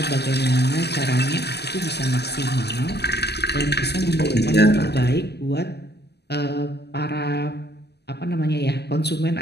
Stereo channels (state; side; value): late; right; 0.49 ms